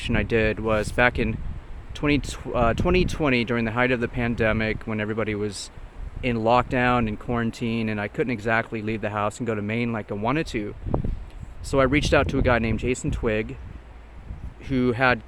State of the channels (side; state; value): both; identical; correlation 1.00